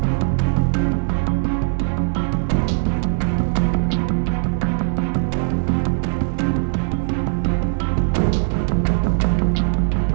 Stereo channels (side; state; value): left; silent; digital silence